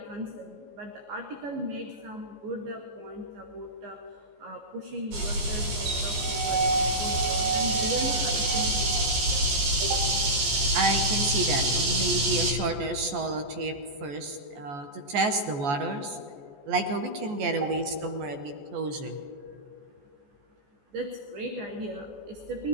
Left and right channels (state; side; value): late; left; 14 ms